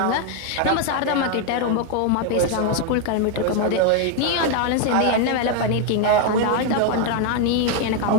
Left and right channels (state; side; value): different; both; correlation 0.01